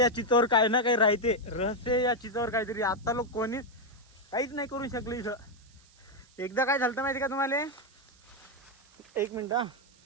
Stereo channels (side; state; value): right; noise; hiss, 29 dB below the sound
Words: चितावर काही ना काही राहते, रहस्य या चितावर काहीतरी. आता लोक कोणीच काहीच नाही करू शकले इथं. एकदा काय झालं माहिती का तुम्हाला, 1 मिनिट हा.